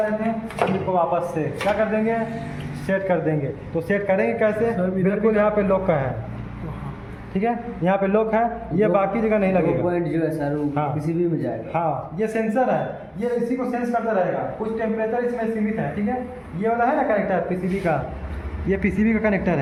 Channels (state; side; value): identical; both; correlation 1.00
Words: लेते हैं हम इसको वापस से क्या कर देंगे? सेट कर देंगे। तो सेट करेंगे कैसे? बिल्कुल यहाँ पे लॉक का है, ठीक है, यहाँ पे लॉक है, ये बाकी जगह नहीं लगेगा। पॉइंट जो है सर वो हाँ, पीसीबी में जाएगा। हाँ, ये सेंसर है, ये इसी को सेंस करता रहेगा। कुछ टेम्परेचर इसमें सीमित है, ठीक है। ये वाला है ना कनेक्टर पीसीबी का, ये पीसीबी का कनेक्टर